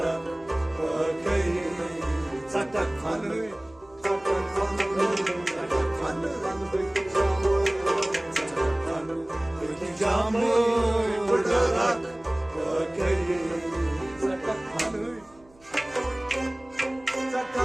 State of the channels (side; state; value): right; noise; hum, 28 dB below the sound